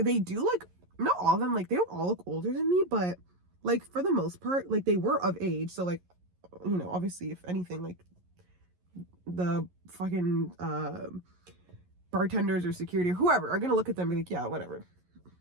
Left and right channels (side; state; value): left; late; 11 ms